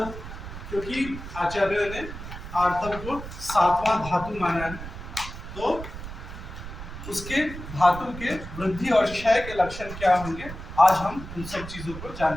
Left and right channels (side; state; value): right; noise; rumble, 10 dB below the sound